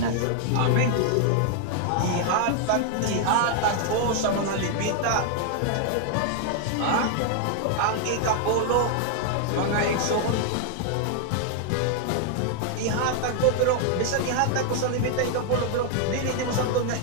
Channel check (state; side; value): different; both; correlation 0.00